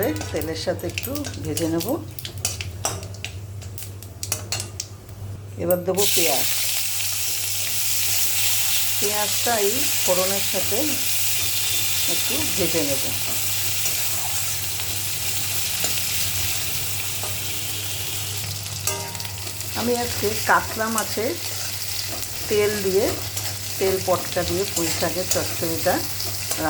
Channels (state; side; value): identical; both; correlation 1.00